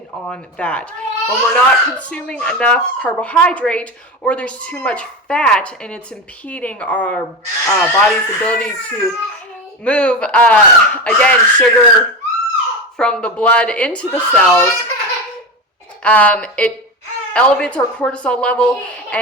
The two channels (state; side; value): normal; both; correlation 0.21